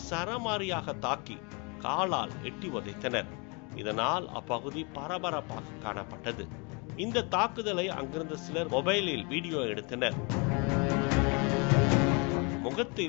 சரமாரியாக தாக்கி காலால் எட்டி உதைத்தனர். இதனால் அப்பகுதி பரபரப்பாக காணப்பட்டது. இந்த தாக்குதலை அங்கிருந்த சிலர் மொபைலில் வீடியோ எடுத்தனர்.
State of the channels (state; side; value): quieter; right; 31.9 dB